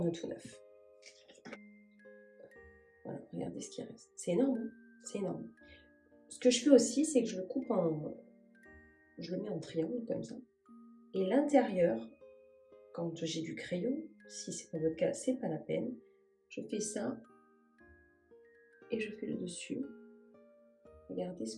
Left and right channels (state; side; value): identical; both; correlation 1.00